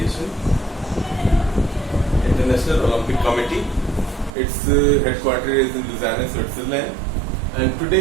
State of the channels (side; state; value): left; drops out; at 4.3 s